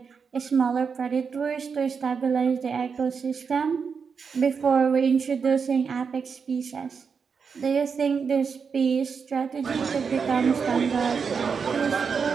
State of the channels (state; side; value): quieter; left; 5.9 dB